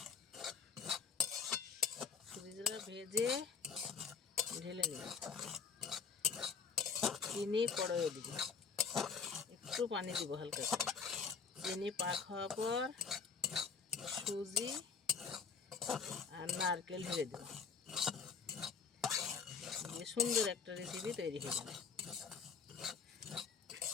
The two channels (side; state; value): right; quieter; 5.8 dB